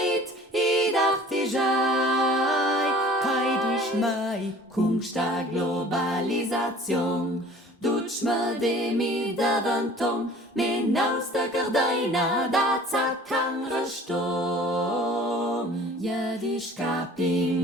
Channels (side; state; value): both; normal; correlation 0.48